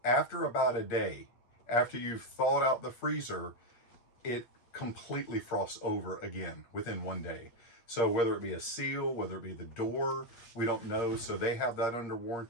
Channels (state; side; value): late; right; 8.6 ms